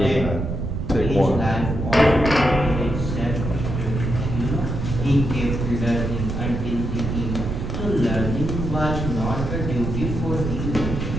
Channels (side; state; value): right; noise; rumble, 3 dB below the sound